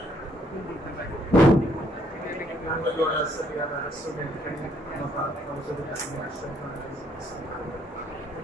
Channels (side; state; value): both; normal; correlation 0.69